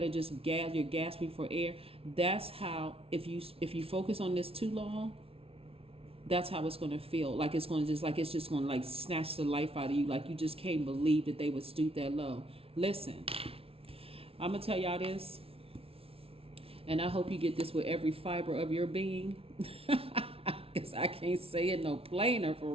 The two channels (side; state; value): left; late; 0.27 ms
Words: just you're gasping for air. That's how, if you focus on this too long, that's how it's going to feel. Like it's just going to like snatch the life out of you. Like you just can't believe that they would stoop that low. Listen, I'm going to tell y'all this, and I hope you get this with every fiber of your being, because I can't say it no plainer for